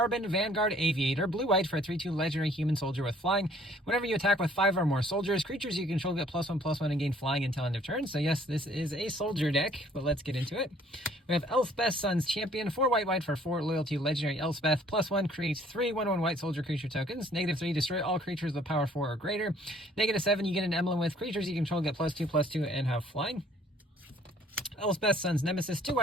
Vanguard, Aviator, blue-white for a 3/2 legendary human soldier with flying. Whenever you attack with 5 or more soldiers, creatures you control get +1/+1 and gain flying until end of turn. So yes, this is a soldier deck, but let's get into it. We have Elspeth's Son's Champion, 4 white for 4 loyalty legendary Elspeth, +1 creates 3 1/1 white soldier creature tokens, -3 destroy all creatures with power 4 or greater, -7 you get an emblem with creatures you control get +2/+2 and have flying. Elspeth's Son's Nemesis, 2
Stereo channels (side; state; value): both; normal; correlation 0.58